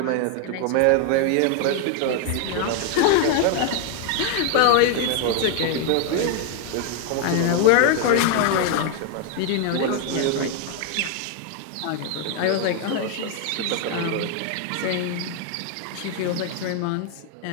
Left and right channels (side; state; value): both; different; correlation 0.01